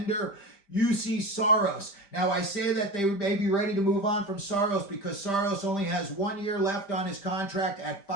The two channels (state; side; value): late; right; 5.1 ms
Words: Juuse Saros. Now, I say that they may be ready to move on from Saros because Saros only has 1 year left on his contract at